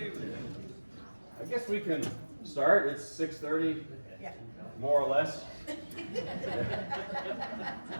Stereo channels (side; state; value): both; inverted; correlation -1.00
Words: I guess we can start. It's 6:30, more or less.